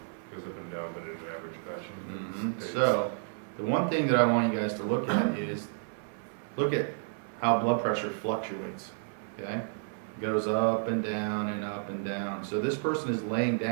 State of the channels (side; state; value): left; silent; 57 dB below the other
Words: Goes up and down, but in an average fashion. It's- So, the one thing that I want you guys to look at is, look at how blood pressure fluctuates, okay? Goes up and down and up and down. So this person is laying